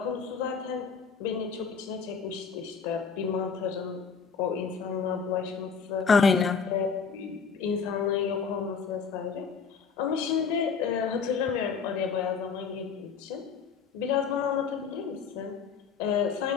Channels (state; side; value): quieter; right; 5.9 dB